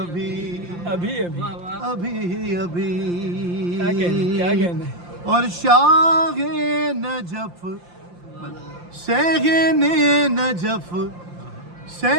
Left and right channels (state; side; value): late; left; 5.8 ms